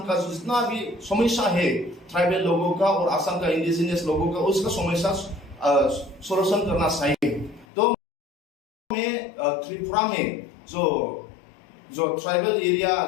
का जितना भी समस्या है ट्राइबल लोगों का और असम का इंडिजिनियस लोगों का, उसका समस्या सोल्यूशन करना चाहिए। तो में त्रिपुरा में जो ट्राइबल एरिया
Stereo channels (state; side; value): drops out; right; at 7.7 s